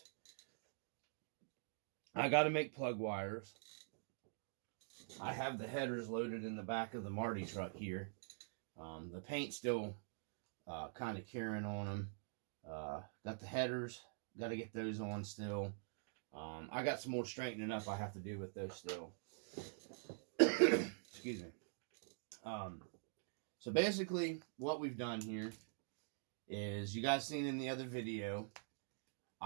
I got to make plug wires. I have the headers loaded in the back of the Marty truck here. The paint's still kind of curing on them. Got the headers. Got to get those on still. I got some more straightening up I have to do with those still. Excuse me. So basically, what we've done here is, you guys seen in the other video,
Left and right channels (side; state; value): left; silent; digital silence